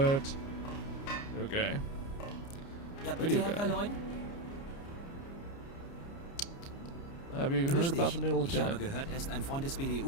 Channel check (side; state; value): right; late; 29 ms